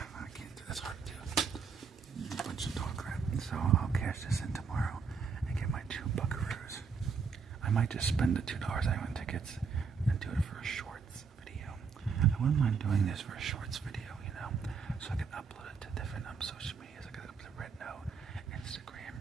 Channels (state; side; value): quieter; left; 5.6 dB